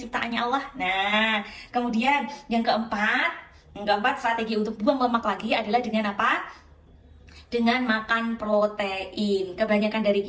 Allah. Nah, kemudian yang keempat strategi untuk buang lemak lagi adalah dengan apa? Dengan makan protein. Kebanyakan dari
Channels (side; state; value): both; identical; correlation 1.00